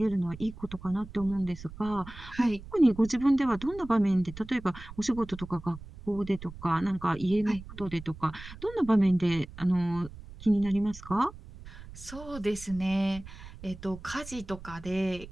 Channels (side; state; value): right; noise; rumble, 15 dB below the sound